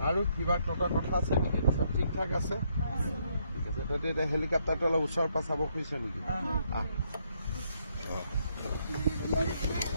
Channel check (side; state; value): both; inverted; correlation -0.73